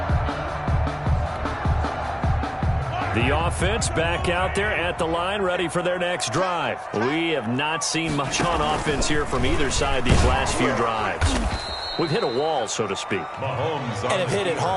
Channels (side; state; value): both; identical; correlation 1.00